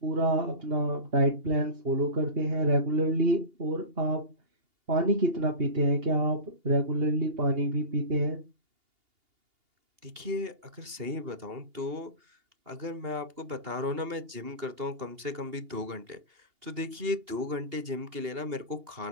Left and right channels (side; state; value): left; late; 2.8 ms